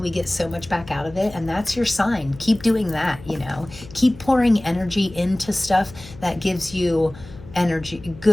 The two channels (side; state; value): left; noise; hum, 18 dB below the sound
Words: get so much back out of it, and that's your sign. Keep doing that, you know, keep pouring energy into stuff that gives you energy,